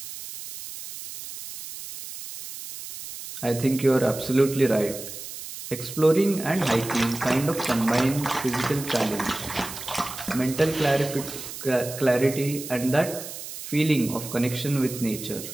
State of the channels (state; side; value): noise; right; hiss, 11 dB below the sound